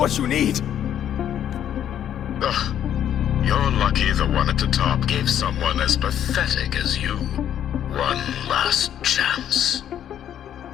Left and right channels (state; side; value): quieter; right; 10.2 dB